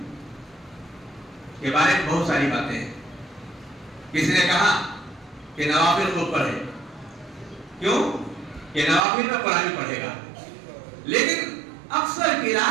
کے بارے میں بہت ساری باتیں ہیں. کسی نے کہا کہ نوافل کو پڑھے. کیوں کہ نوافل میں قرآن پڑھے گا. لیکن اکثر کی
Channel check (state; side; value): drops out; left; at 9.1 s